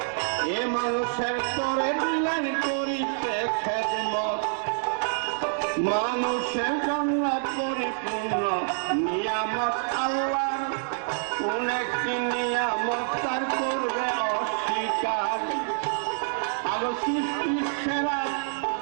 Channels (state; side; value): silent; left; digital silence